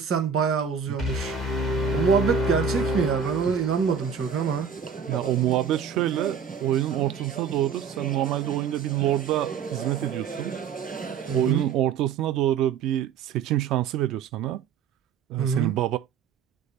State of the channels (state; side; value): quieter; left; 6.9 dB